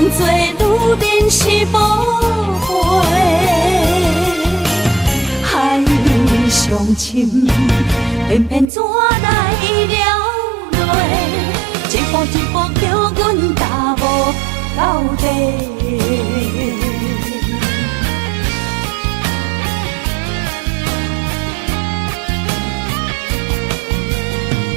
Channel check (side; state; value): left; drops out; at 8.7 s